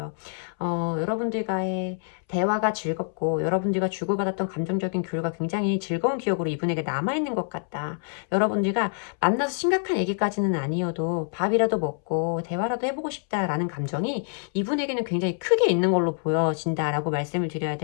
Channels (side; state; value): right; silent; 61 dB below the other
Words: 여러분들과의 대화가 즐겁고 여러분들과 주고받았던 감정적인 교류가 굉장히 즐거운 기억으로 이분에게 남아있는 것 같다. 여러분들과 만나서 심각한 얘기까지는 아니어도 밥이라도 먹고 대화라도 해보고 싶다라는 감정이 이분에게는 굉장히 크게 있는 걸로 보여진다라고 말씀을 드려야